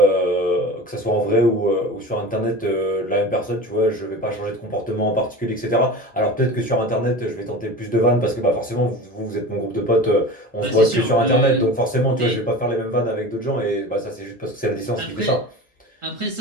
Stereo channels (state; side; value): normal; both; correlation 0.33